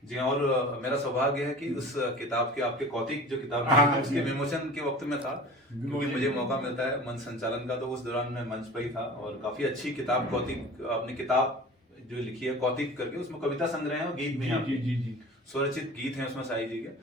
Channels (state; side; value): normal; both; correlation 0.39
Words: जी, और मेरा सौभाग्य है कि उस किताब के, आपके कौतिक जो किताब हाँ, उसके विमोचन के वक्त में था, क्योंकि मुझे मौका मिलता है मंच संचालन का, तो उस दौरान मैं मंच पर ही था। और काफी अच्छी किताब, कौतिक, अपनी किताब जो लिखी है कौतिक करके, उसमें कविता संग्रह है और गीत भी हैं। जी। स्वरचित गीत हैं उसमें शाही जी के।